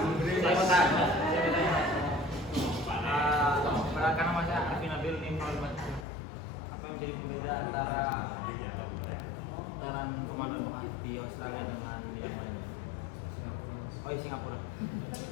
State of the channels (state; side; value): drops out; right; at 6.1 s